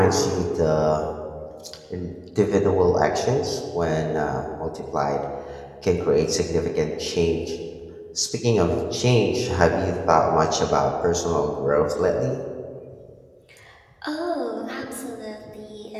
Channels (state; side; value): identical; both; correlation 1.00